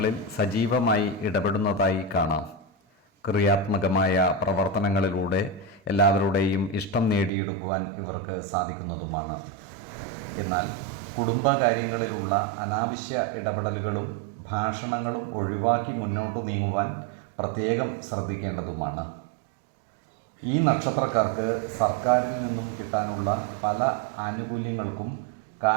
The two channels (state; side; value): drops out; left; at 7.3 s